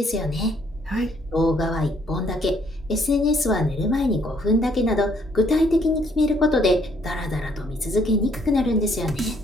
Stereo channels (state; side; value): normal; both; correlation 0.66